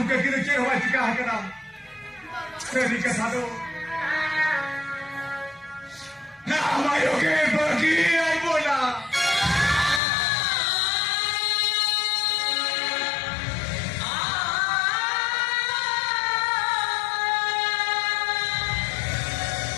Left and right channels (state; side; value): drops out; right; at 10.0 s